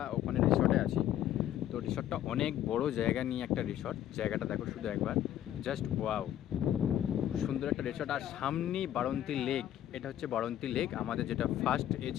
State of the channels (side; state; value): right; quieter; 11.7 dB